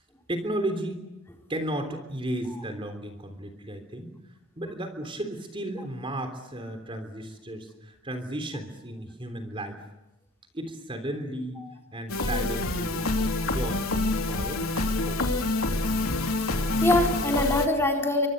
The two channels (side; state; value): both; normal; correlation 0.48